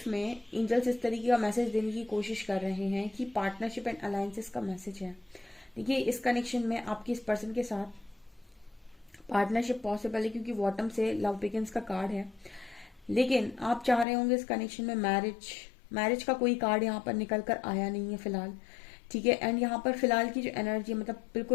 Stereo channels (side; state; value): right; drops out; at 14.1 s